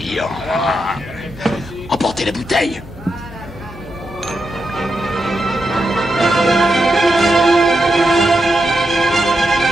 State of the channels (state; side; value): noise; left; hum, 17 dB below the sound